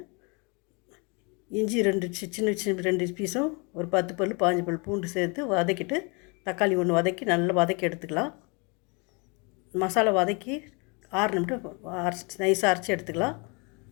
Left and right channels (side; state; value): right; quieter; 31.6 dB